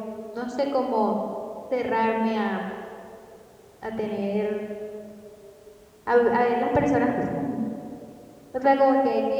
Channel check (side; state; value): both; identical; correlation 1.00